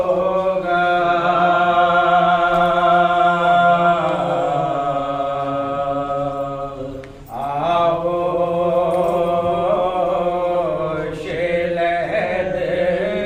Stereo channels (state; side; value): identical; both; correlation 1.00